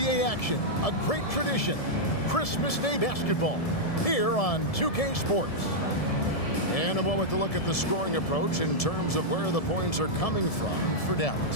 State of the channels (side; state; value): right; late; 1.7 ms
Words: action, a great tradition, Christmas Day basketball, here on 2K Sports. In a moment to look at the scoring approach in terms of where the points are coming from for